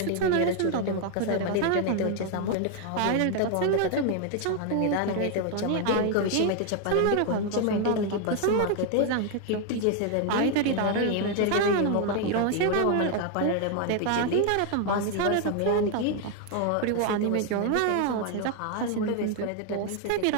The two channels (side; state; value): both; different; correlation 0.01